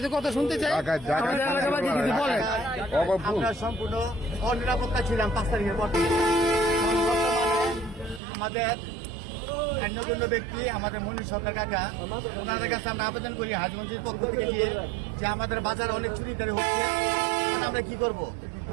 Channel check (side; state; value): left; drops out; at 8.2 s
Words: কথা শুনতে চাই। আমাদের এলাকাবাসী কিছু বলেন। আমরা সম্পূর্ণ অনিরাপত্তা ছিলাম 5 তারিখের পর থেকে। আমাদের অন্যতম ব্যক্তি আমাদের মনীষ সরকার কাকা, ওনাদের কাছে আমরা আবেদন করি হাজগঞ্জের পক্ষ থেকে যে আমাদের বাজারে অনেক চুরিদারি হচ্ছে, আমরা কি করব।